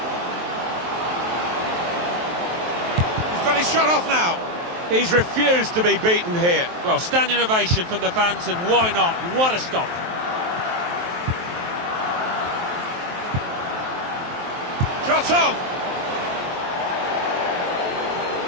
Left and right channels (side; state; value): left; late; 23 ms